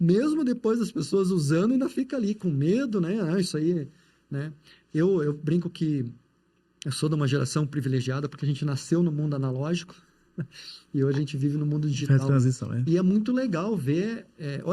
depois das pessoas usando, ainda fica ali com medo, né? Isso aí, né? Eu brinco que Eu sou de uma geração privilegiada porque a gente nasceu no mundo analógico e hoje a gente vive no mundo Faz digital. transição, né? E é muito legal ver...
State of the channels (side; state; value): both; identical; correlation 1.00